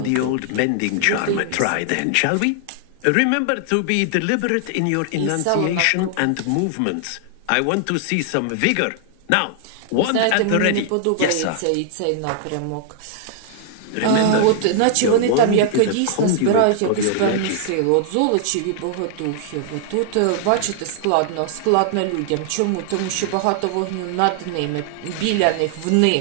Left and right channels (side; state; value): both; different; correlation -0.01